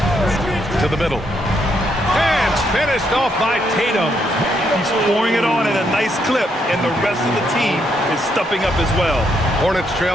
To the middle. And finished off by Tatum. He's pouring it on at a nice clip, and the rest of the team is stepping up as well. Hornets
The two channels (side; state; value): both; normal; correlation 0.76